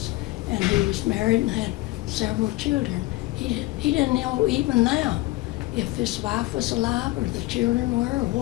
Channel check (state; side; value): quieter; right; 19.7 dB